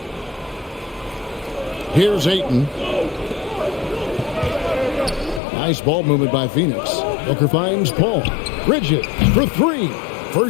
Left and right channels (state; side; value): drops out; right; at 5.4 s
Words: Here's Ayton. Nice ball movement by Phoenix. Booker finds Paul. Bridges for 3.